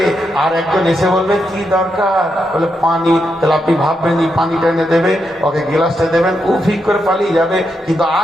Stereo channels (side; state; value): both; normal; correlation 0.83